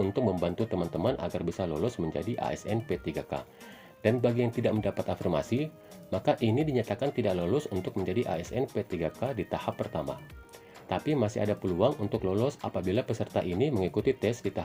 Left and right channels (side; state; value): both; identical; correlation 1.00